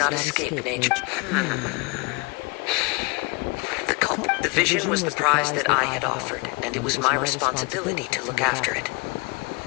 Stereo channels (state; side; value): quieter; right; 28.4 dB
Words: escape nature. The vision was the prize that I had offered, and it was my responsibility to look after it.